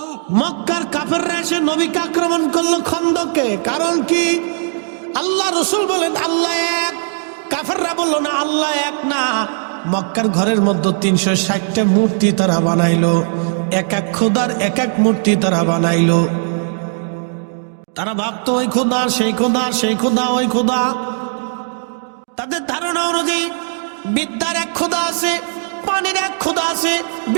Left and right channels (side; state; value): left; silent; digital silence